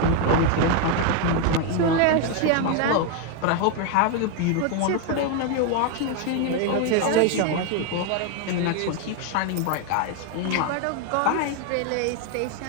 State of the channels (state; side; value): different; both; correlation 0.01